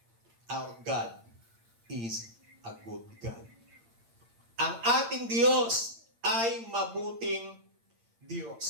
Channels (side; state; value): left; late; 8.8 ms